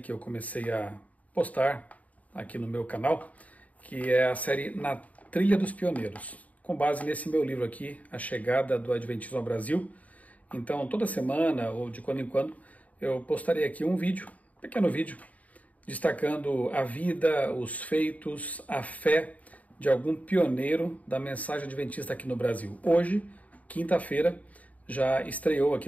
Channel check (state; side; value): late; right; 0.071 ms